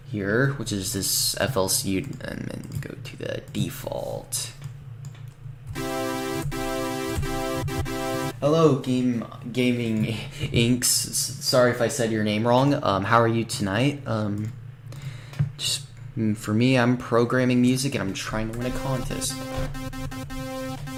here, which is this FLC, and then go to the default. Hello, Gaming Inks. Sorry if I said your name wrong. How are you tonight? Just for me, I'm programming music and I'm trying to win a contest.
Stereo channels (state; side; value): identical; both; correlation 1.00